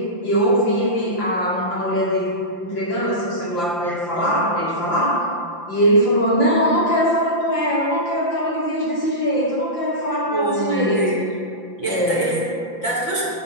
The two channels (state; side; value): late; right; 5.8 ms